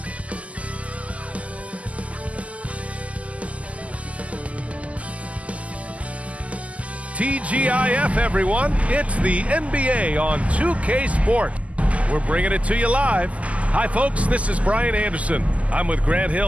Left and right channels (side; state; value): left; late; 0.067 ms